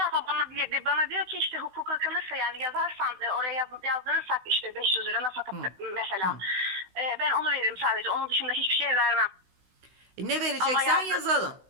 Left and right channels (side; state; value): left; late; 16 ms